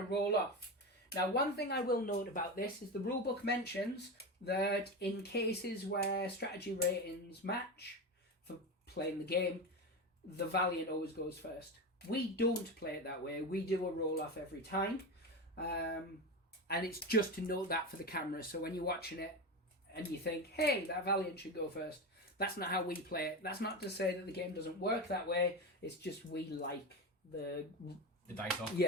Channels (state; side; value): normal; both; correlation 0.20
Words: roll off. Now, one thing I will note about this is the rulebook mentions that in cases where strategy ratings match for playing the game, the Valiant always goes first. We don't play it that way. We do a roll-off every time. And it's just to note that for the camera. So when you're watching it and you think, hey, that Valiant should go first, that's not how we play it. That's not to say that the game doesn't work that way. It's just we like the dice off.